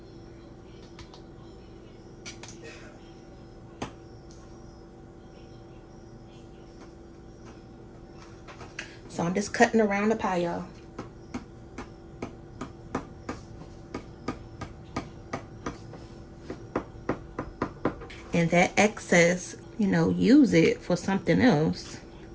So I'm just cutting around the pie, y'all. And that excess, you know, use it for something else.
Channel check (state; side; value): identical; both; correlation 1.00